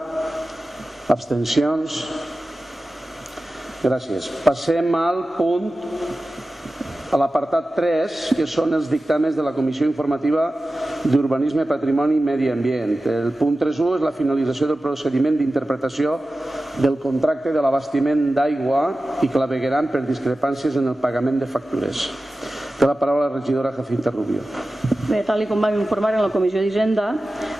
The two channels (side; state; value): both; normal; correlation 0.95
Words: Abstencions? Gràcies. Passem al punt, a l'apartat 3, que són els dictàmens de la Comissió Informativa d'Urbanisme, Patrimoni i Medi Ambient. El punt 3.1 és la finalització del procediment d'interpretació del contracte de l'abastiment d'aigua i clavegueram per discrepàncies en el pagament de factures. Té la paraula la regidora Jacinta Rubio. Bé, tal com vam informar en la Comissió d'Hisenda,